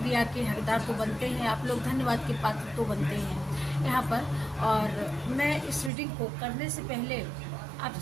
के हकदार तो बनते हैं, आप लोग धन्यवाद के पात्र तो बनते हैं यहाँ पर। और मैं इस रीडिंग को करने से पहले आप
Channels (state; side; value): drops out; left; at 5.9 s